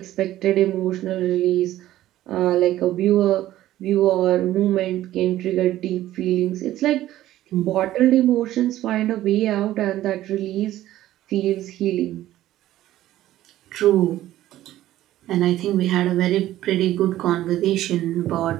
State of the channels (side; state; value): left; quieter; 14.1 dB